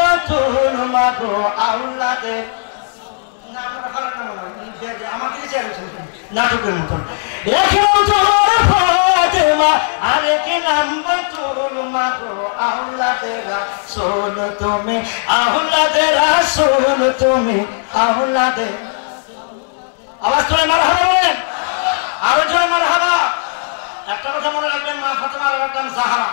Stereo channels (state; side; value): silent; right; digital silence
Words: মাগো আওলাদের নাটকের মতন। এক নাম তোমার ফাতেমা, আরেক নাম বতুল, মাগো আওলাদেরা সোল তুমি, আওলাদেরা সোল তুমি, আওলাদে। আওয়াজ তোলে মারহাবা বলেন, আরো জোরে মারহাবা। একটা কথা মনে রাখবেন, মা ফাতেমার নাম জাহারা,